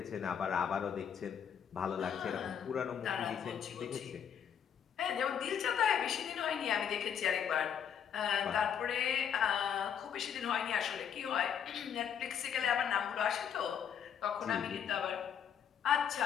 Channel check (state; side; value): quieter; right; 8.2 dB